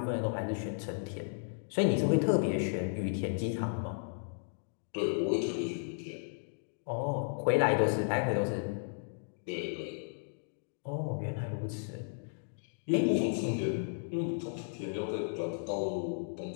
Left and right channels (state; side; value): silent; right; digital silence